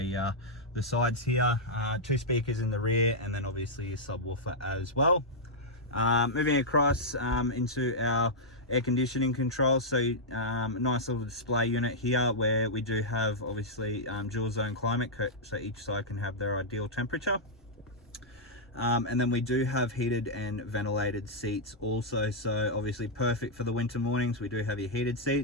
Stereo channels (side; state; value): both; normal; correlation -0.07